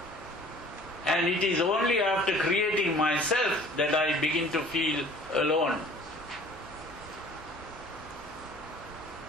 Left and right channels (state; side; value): normal; both; correlation 0.50